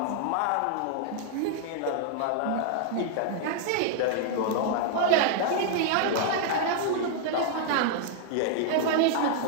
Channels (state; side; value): different; both; correlation 0.00